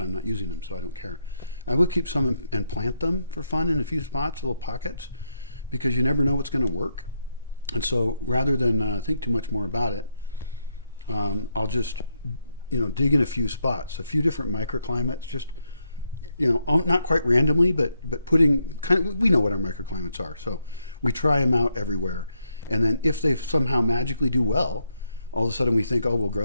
not using them, so I don't care. I would keep some and plant them for fun in a few spots, little pockets, because you never know what's going to work. And so rather than think too much more about it, I'll just, dig in a few spots, a few different microclimates, just not quite randomly, but putting we know what our microclimates are. So we try them out everywhere. And then if they somehow magically do well, all of a sudden we think, we'll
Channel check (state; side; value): inverted; both; correlation -0.79